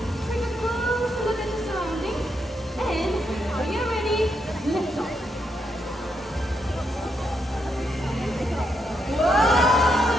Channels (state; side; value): normal; both; correlation 0.80